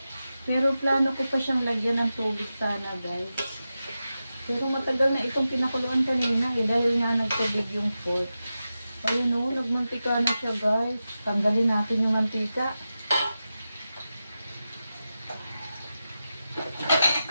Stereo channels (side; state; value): both; inverted; correlation -0.92